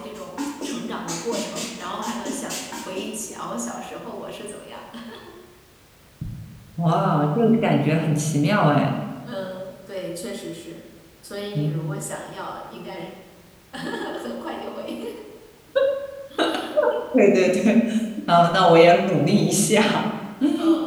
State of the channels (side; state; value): both; identical; correlation 1.00